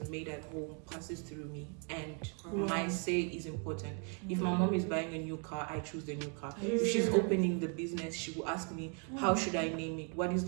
made at home passes through me, and my say is important. If my mom is buying a new car, I choose the new car. If she's opening the business, she will ask me, how should I name it? What is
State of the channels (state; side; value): quieter; left; 38.9 dB